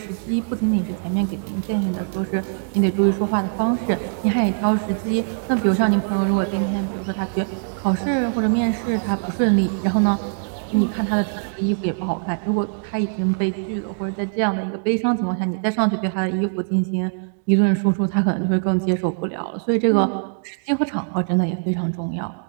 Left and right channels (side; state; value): left; silent; digital silence